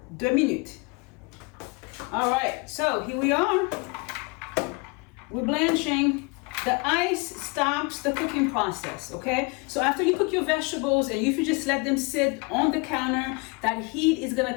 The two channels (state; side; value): quieter; right; 29.2 dB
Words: 2 minutes. All right, so here we are. We're blanching. The ice stops the cooking process, okay? So after you cook your vegetables and if you just let them sit on the counter, that heat is gonna